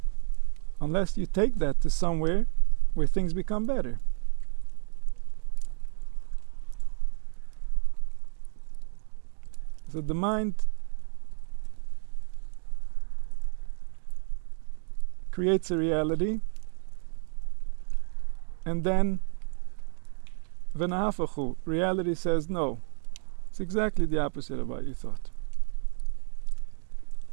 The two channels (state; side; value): silent; left; 58 dB below the other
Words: unless you take that to somewhere where things become better. So the mind creates a reality, and then v'nahafachu, reality says no. It's exactly the opposite of what you thought.